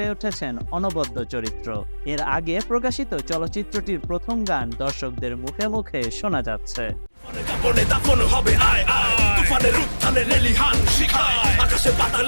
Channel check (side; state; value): both; inverted; correlation -1.00